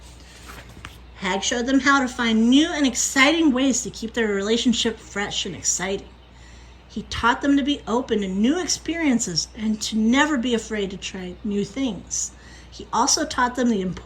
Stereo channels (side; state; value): both; identical; correlation 1.00